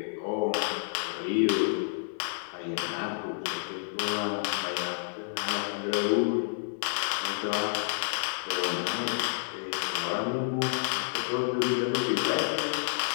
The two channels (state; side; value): silent; right; digital silence